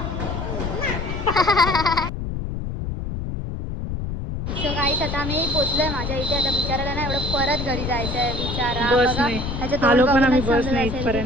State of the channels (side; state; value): left; noise; rumble, 4 dB below the sound